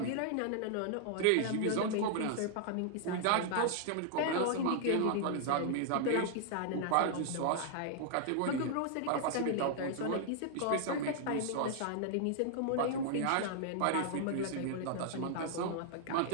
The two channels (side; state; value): both; different; correlation -0.01